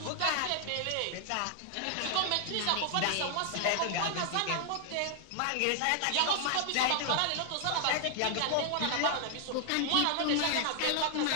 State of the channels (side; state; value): both; different; correlation 0.00